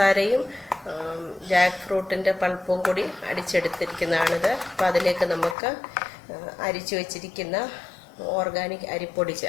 ജാക്ക് ഫ്രൂട്ടിൻ്റെ പൾപ്പും കൂടി അടിച്ചെടുത്തിരിക്കുന്നതാണിത്. അപ്പോൾ അതിലേക്ക് നമുക്ക് അരിച്ചു വച്ചിരിക്കുന്ന ഓർഗാനിക് അരിപ്പൊടി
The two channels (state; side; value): drops out; right; at 5.6 s